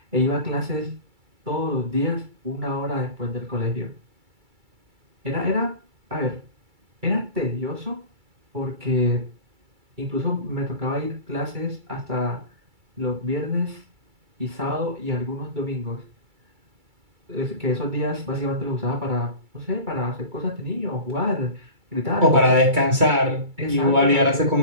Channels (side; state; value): left; late; 2.3 ms